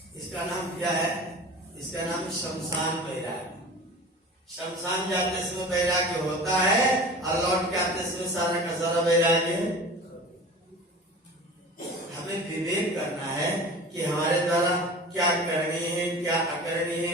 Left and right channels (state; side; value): normal; both; correlation 0.38